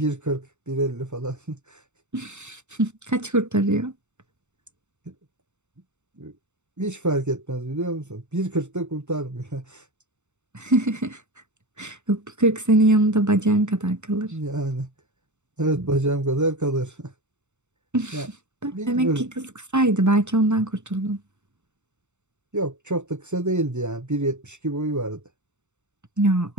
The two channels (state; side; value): late; left; 0.83 ms